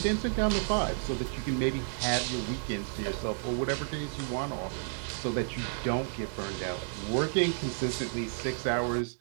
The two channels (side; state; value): left; silent; 57 dB below the other